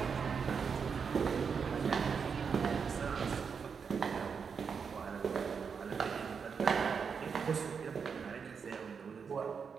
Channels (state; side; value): quieter; left; 6.1 dB